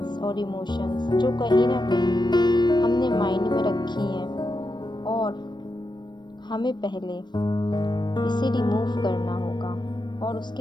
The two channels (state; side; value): late; right; 0.22 ms